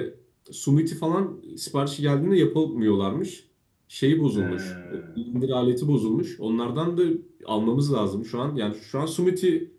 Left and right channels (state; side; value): identical; both; correlation 1.00